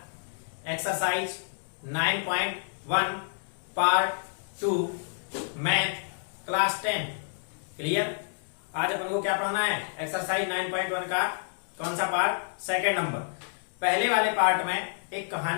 exercise 9.1 part 2 math class 10 clear. आज अपन को क्या पढ़ना है? एक्सरसाइज 9.1 का कौन सा पार्ट? Second number. पहले वाले पार्ट में एक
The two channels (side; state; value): right; silent; digital silence